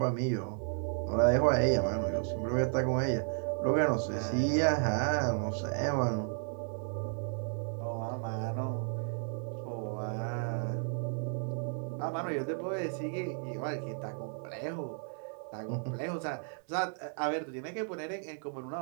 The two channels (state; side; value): silent; left; 55 dB below the other